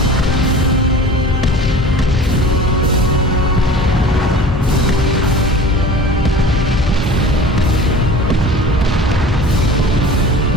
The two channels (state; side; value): normal; both; correlation 0.41